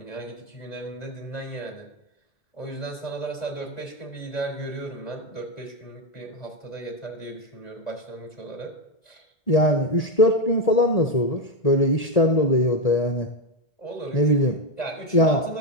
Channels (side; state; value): right; late; 1.8 ms